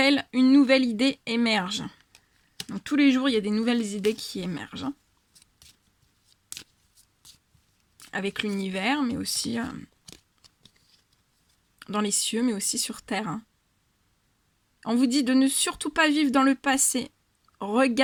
une nouvelle idée émerge. Donc tous les jours, il y a des nouvelles idées qui émergent. Hein. Avec l'univers, mais aussi dans les cieux, mais aussi sur Terre. Hein. On vous dit de ne surtout pas vivre dans le passé.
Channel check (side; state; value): both; identical; correlation 1.00